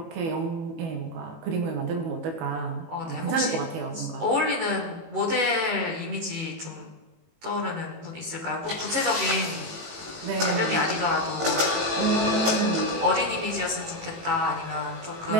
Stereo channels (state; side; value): late; left; 18 ms